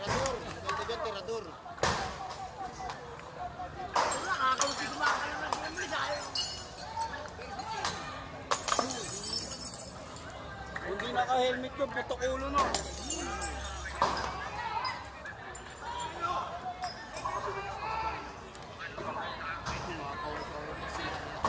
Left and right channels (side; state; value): both; identical; correlation 1.00